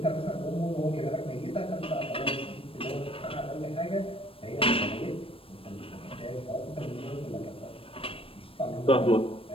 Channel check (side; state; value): right; late; 0.27 ms